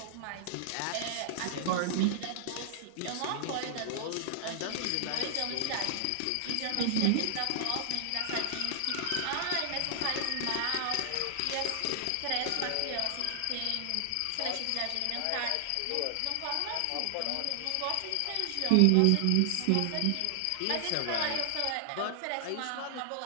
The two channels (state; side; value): different; both; correlation 0.00